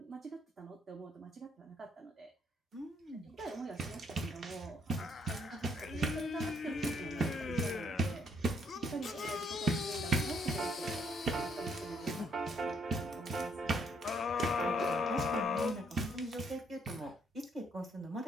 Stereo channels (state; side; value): normal; both; correlation 0.70